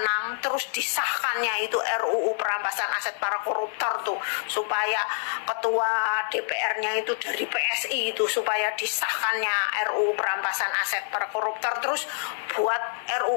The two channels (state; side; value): silent; right; digital silence